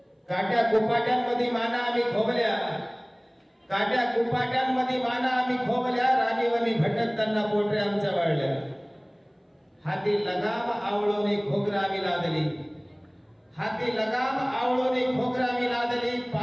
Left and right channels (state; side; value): identical; both; correlation 1.00